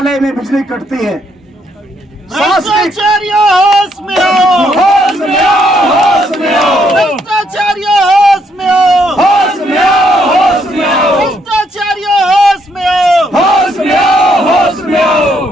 में बिजली कटती है। भ्रष्टाचारियों होश में आओ, होश में आओ, होश में आओ, भ्रष्टाचारियों होश में आओ, होश में आओ, होश में आओ, भ्रष्टाचारियों होश में आओ, होश में आओ, होश में आओ।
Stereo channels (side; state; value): both; normal; correlation 0.73